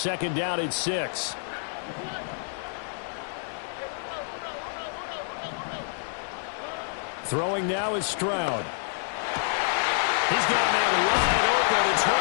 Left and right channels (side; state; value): right; silent; digital silence